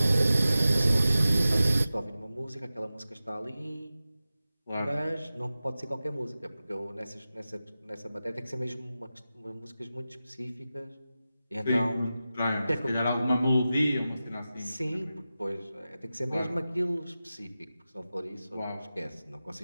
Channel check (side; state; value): both; inverted; correlation -0.94